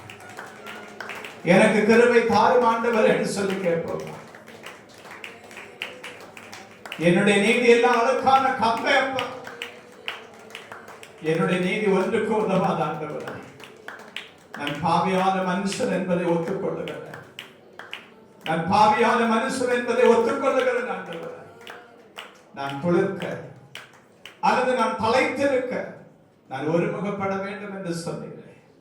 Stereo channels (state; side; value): identical; both; correlation 1.00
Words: எனக்கு கிருபை தாரும் ஆண்டவர் என்று சொல்லி கேட்போம். என்னுடைய நீதி எல்லாம் அழுக்கான கம்பை அப்பா, என்னுடைய நீதி ஒன்றுக்கு உதவாத ஆண்டவர். நான் பாவியான மனுஷன் என்பதை ஒத்துக்கொள்ளுகிறேன். நான் பாவியான மனுஷன் என்பதை ஒத்துக்கொள்ளுகிறேன் ஆண்டவர். நான் துளிர்க்க அல்லது நான் தலைத்திருக்க நான் ஒருமுகப்பட வேண்டும் என்று சொன்னீர்கள்.